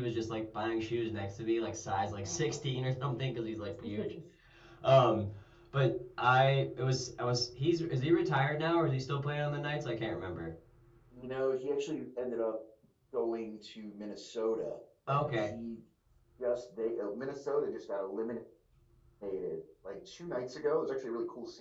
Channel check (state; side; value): identical; both; correlation 1.00